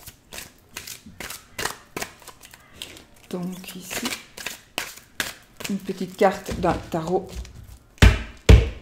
? Donc ici, une petite carte d'un tarot.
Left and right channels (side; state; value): both; identical; correlation 1.00